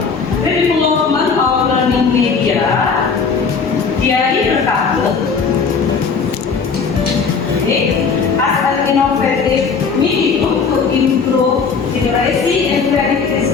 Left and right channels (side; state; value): right; quieter; 5.4 dB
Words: The Development of Learning Media, Diari Berkabut. As an innovative medium to improve literacy and creativity